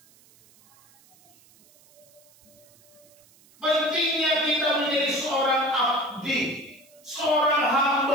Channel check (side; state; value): right; noise; hiss, 28 dB below the sound